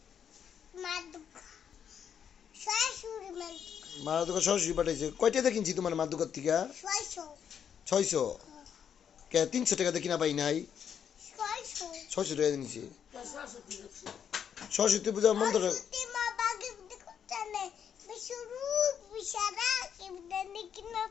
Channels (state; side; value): quieter; right; 8.1 dB